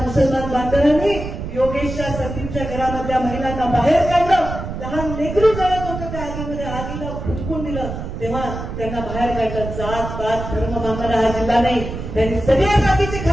बांधवांनी योगेशच्या संदीपच्या घरामधल्या महिलांना बाहेर काढलं. लहान लेकरू जळत होतं त्या आगीमध्ये, आगीला फुटकून दिलं. तेव्हा त्यांना बाहेर काढलं. जात पात धर्म मानणारा हा जिल्हा नाही, त्यांनी सगळ्या जातीचे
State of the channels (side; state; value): right; noise; rumble, 7 dB below the sound